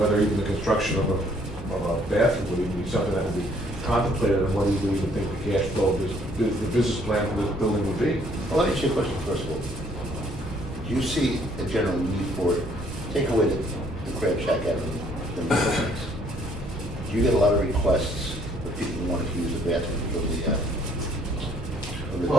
even the construction of a bathroom would even be something that would be contemplated, and what do you even think the cash flow, the business plan for this building would be? Well, let me ask you a question first of all. Do you see a general need for it? Take away the crab shack out of the buildings. Do you get a lot of requests for people who want to use the bathroom from the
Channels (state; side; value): normal; both; correlation 0.63